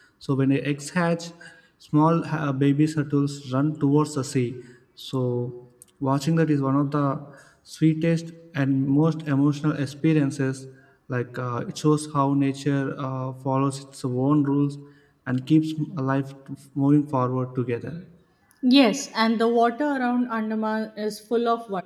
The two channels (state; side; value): identical; both; correlation 1.00